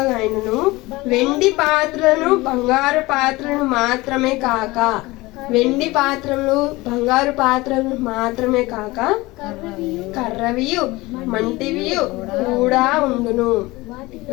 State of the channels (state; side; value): quieter; right; 21.0 dB